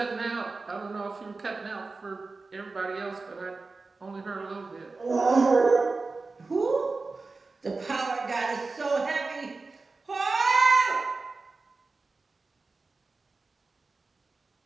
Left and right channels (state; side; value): quieter; left; 3.8 dB